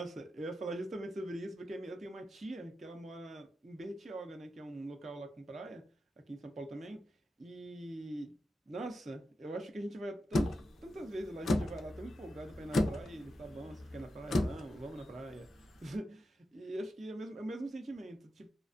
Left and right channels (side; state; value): both; normal; correlation 0.89